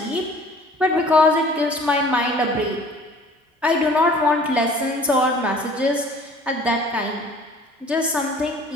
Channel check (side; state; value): both; normal; correlation 0.50